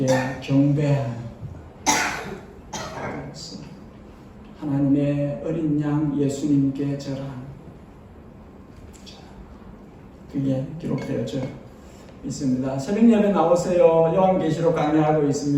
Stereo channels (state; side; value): identical; both; correlation 1.00